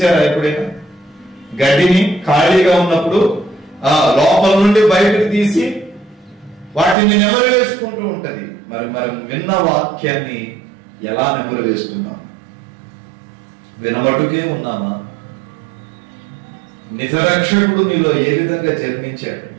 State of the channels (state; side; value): drops out; left; at 7.0 s